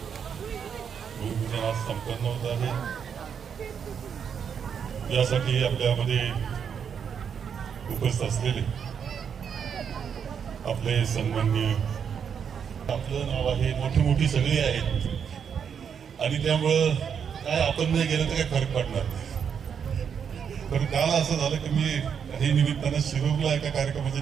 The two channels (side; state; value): left; quieter; 7.3 dB